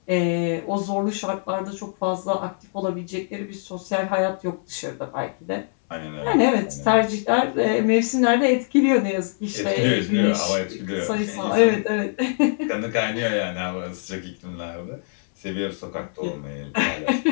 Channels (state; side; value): silent; right; 61 dB below the other